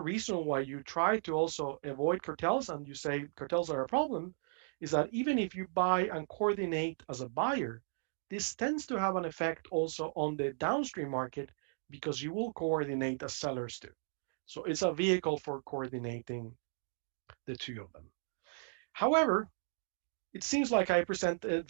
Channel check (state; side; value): silent; left; digital silence